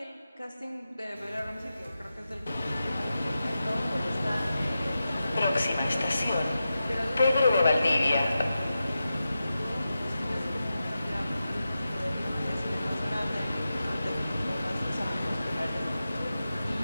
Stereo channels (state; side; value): inverted; both; correlation -0.92